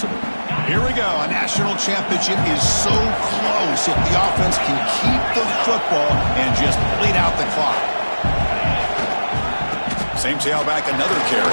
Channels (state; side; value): inverted; both; correlation -1.00